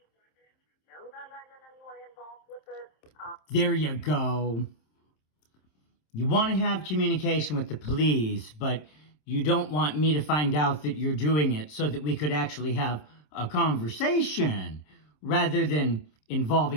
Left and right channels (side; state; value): right; late; 27 ms